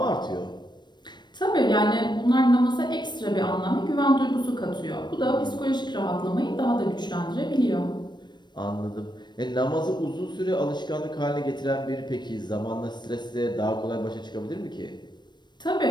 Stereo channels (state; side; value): late; right; 0.22 ms